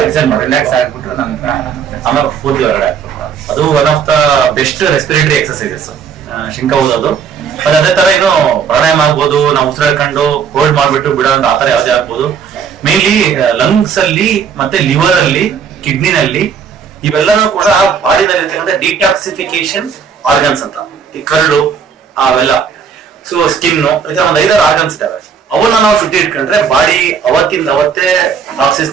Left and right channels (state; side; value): quieter; left; 6.7 dB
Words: ಎಕ್ಸರ್ಸೈಸ್ ಮಾಡಿ ರಿಲ್ಯಾಕ್ಸ್ ಆಗ್ಬಿಟ್ಟು ನಂತರ ಆಮೇಲೆ ಪೂರ್ತಿ ಹೊರಗಡೆ ಆಗ್ಬಿಟ್ಟು, ಅದು one of the best respiratory exercises ಶಂಕ ಓದೋದು. ಮತ್ತೆ ಅದೇ ತರ ಏನು ಪ್ರಾಣಾಯಾಮ ಆಗ್ಬೋದು, ನಾವು ಉಸಿರಾಡ್ಕೊಂಡು ಹೋಲ್ಡ್ ಮಾಡ್ಬಿಟ್ಟು ಬಿಡೋ ಅಂತ ಆತರ ಯಾವ್ದೇ ಆಗ್ಬೋದು. ಮೇನ್ಲಿ ಲಂಗ್ಸ್ ಅಲ್ಲಿ ಮತ್ತೆ ಲಿವರ್ ಅಲ್ಲಿ, ಕಿಡ್ನಿನಲ್ಲಿ, ಇವೆಲ್ಲನೂ ಕೂಡ ಬಾಡಿನಲ್ಲಿ ಇರ್ತಕ್ಕಂಥ ಡಿಟಾಕ್ಸಿಫಿಕೇಶನ್ ಆರ್ಗನ್ಸ್ ಅಂತ. ಈ ಕರಳು ಅವೆಲ್ಲ, ಸೊ ಸ್ಕಿನ್, ಈ ತರ ಒಂದು 5-6 ಆರ್ಗನ್ಸ್ ಇದಾವೆ. ಅವನ್ನ ನಾವು ಶುದ್ಧಿ ಇಟ್ಕೊಂಡ್ರೆ ಬಾಡಿ ಅವತ್ತಿಂದ ಅವತ್ತೇ ಟಾಕ್ಸಿನ್ಸ್